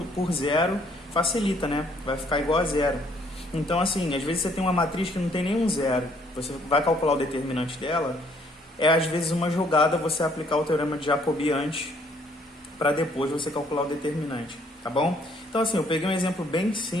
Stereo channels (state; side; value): normal; both; correlation 0.65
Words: zero, facilita, né? Vai ficar igual a zero. Então, assim, às vezes você tem uma matriz que não tem nenhum zero. Você vai calcular o determinante dela. É, às vezes, uma jogada você aplicar o teorema de Jacobi antes, para depois você calcular o determinante, tá bom? Então, assim, eu peguei um exemplo bem